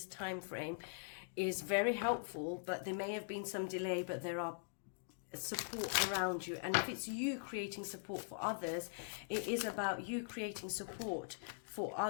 time frame is very helpful, but there may have been some delay, but there are support around you. And if it's you creating support for others, it is about you creating support for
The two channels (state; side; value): silent; right; digital silence